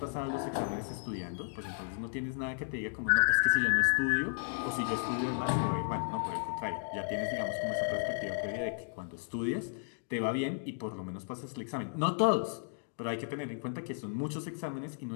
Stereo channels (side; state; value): right; silent; digital silence